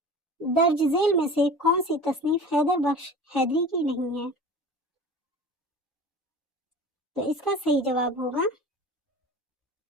दर्ज झेल में से कौन सी तसनीफ हैदर बख्श हैदरी की नहीं है? तो इसका सही जवाब होगा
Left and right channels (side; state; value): both; normal; correlation 0.38